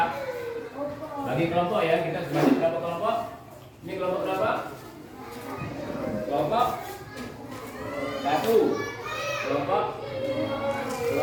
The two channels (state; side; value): identical; both; correlation 1.00